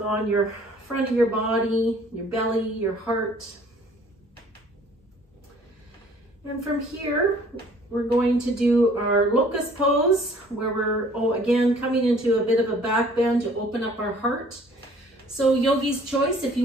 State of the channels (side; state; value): both; normal; correlation 0.55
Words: your front of your body, your belly, your heart. And from here, we're going to do our locust pose, where we're, again, coming into a bit of a back bend to open up our heart. So yogi's choice, if